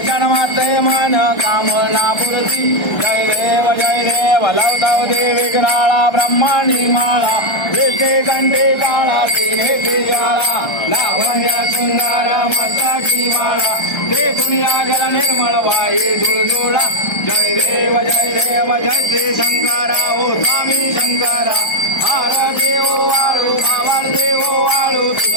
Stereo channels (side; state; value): right; late; 1.3 ms